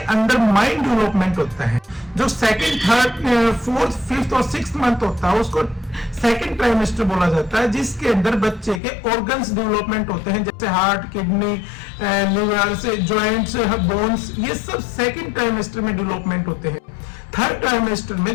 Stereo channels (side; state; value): right; drops out; at 8.8 s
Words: अंदर माइंड डेवलपमेंट होता है। जो सेकंड, थर्ड, फोर्थ, फिफ्थ और 6th मंथ होता है उसको सेकंड ट्राइमेस्टर बोला जाता है, जिसके अंदर बच्चे के ऑर्गन्स डेवलपमेंट होते हैं, जैसे हार्ट, किडनी, लिवर से जॉइंट्स, बोन्स, ये सब सेकंड ट्राइमेस्टर में डेवलपमेंट होते हैं। थर्ड ट्राइमेस्टर में